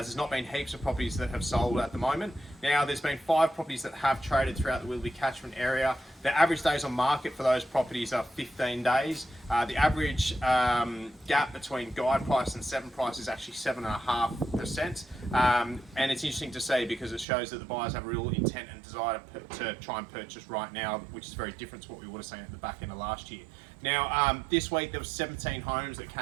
there's not been heaps of properties that have sold at the moment. Now, there's been 5 properties that have traded throughout the Willoughby catchment area. The average days on market for those properties are 15 days. The average gap between guide price and 7 price is actually 7.5%. And it's interesting to see because it shows that the buyers have a real intent and desire to try and purchase right now, which is very different to what we would have seen at the back end of last year. Now, this week there was 17 homes that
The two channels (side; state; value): left; drops out; at 17.2 s